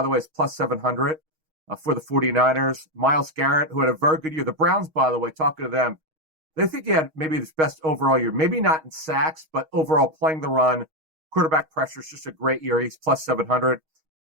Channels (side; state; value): left; late; 6.4 ms